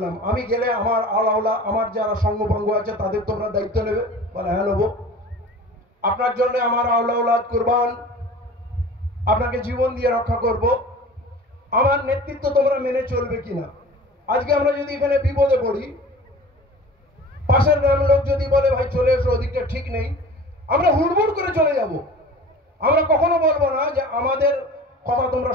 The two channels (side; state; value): both; normal; correlation 0.40